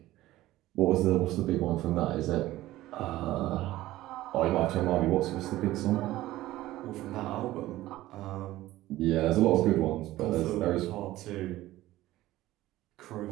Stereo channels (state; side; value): quieter; left; 16.1 dB